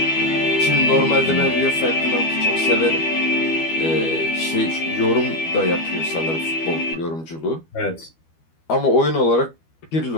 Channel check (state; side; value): late; right; 12 ms